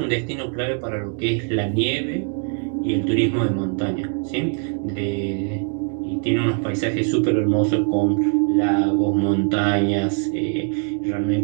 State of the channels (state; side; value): quieter; left; 38.7 dB